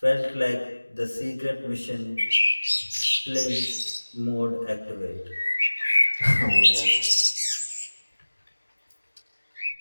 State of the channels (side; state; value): both; inverted; correlation -1.00